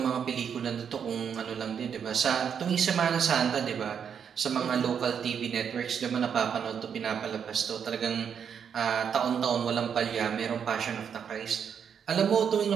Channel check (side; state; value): left; quieter; 7.5 dB